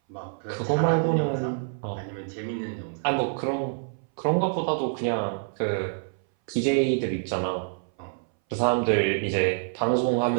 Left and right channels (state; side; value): silent; left; 60 dB below the other